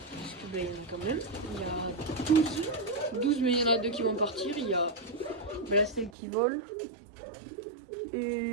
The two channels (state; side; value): drops out; left; at 6.1 s